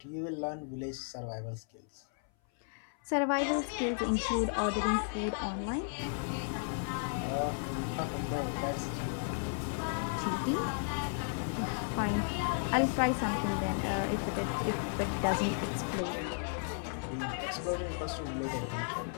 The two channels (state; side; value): silent; right; 55 dB below the other